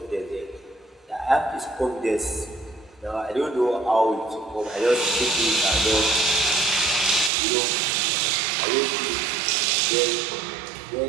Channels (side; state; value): left; drops out; at 7.3 s